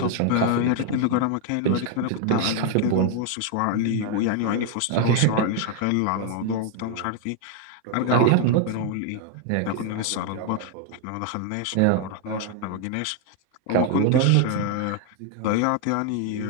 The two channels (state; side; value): different; both; correlation 0.00